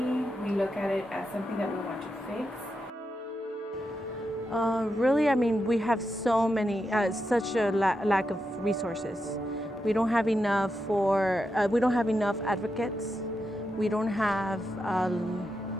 We look at it as something that we want to fix. Really, I mean, we have so many, such a lack of resources. We don't have enough we don't have enough advocates. We don't have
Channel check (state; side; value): normal; both; correlation 0.86